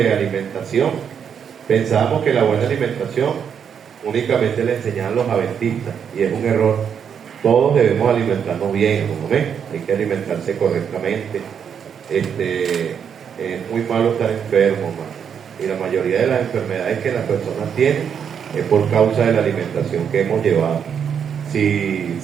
alimentación, pensábamos que la buena alimentación únicamente le enseñaban los adventistas, y es un error. Todos debemos alimentarnos bien, ¿no ven? Hay que alimentarse correctamente. Es muy malo estar enfermo, man. Y la mayoría de las enfermedades que las personas tienen es por causa de la alimentación que hemos llevado.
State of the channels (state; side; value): quieter; left; 7.6 dB